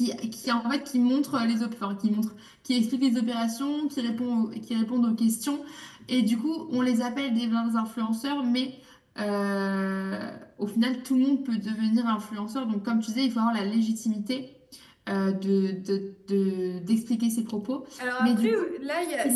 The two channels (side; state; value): both; identical; correlation 1.00